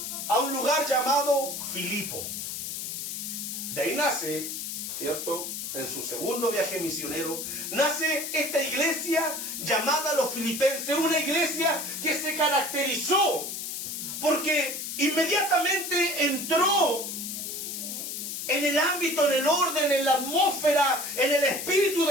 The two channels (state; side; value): noise; left; hiss, 5 dB below the sound